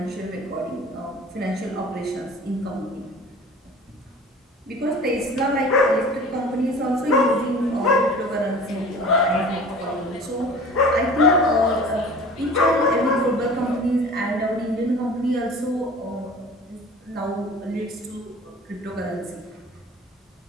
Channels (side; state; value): both; normal; correlation 0.42